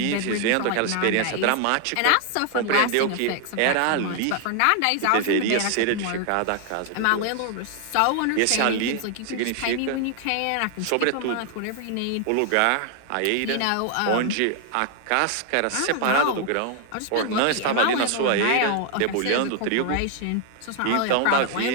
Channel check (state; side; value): different; both; correlation 0.00